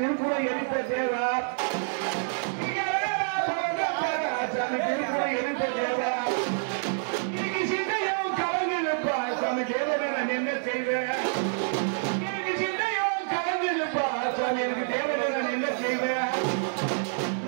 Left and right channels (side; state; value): left; silent; digital silence